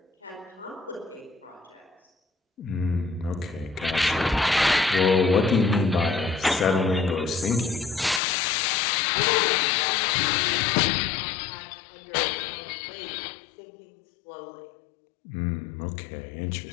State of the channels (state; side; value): drops out; right; at 8.2 s